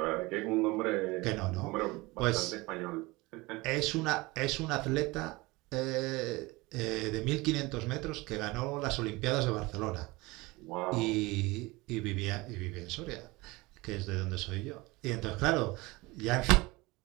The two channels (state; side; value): quieter; left; 22.5 dB